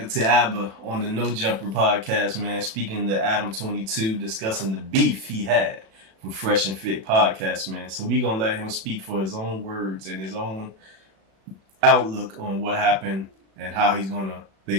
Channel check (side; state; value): left; late; 36 ms